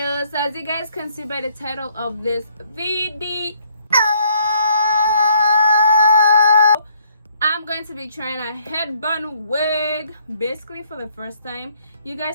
So as you guys can see by the title of this video, I'm going to be trying a headband wig basically for the first time. You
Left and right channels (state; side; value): inverted; both; correlation -0.65